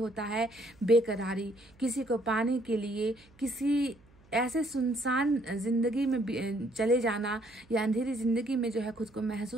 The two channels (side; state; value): right; noise; hum, 28 dB below the sound